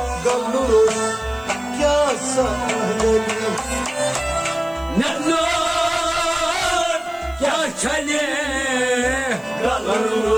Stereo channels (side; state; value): right; noise; hiss, 27 dB below the sound